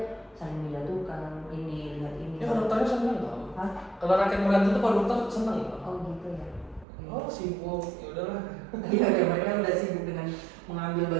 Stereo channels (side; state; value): left; drops out; at 6.9 s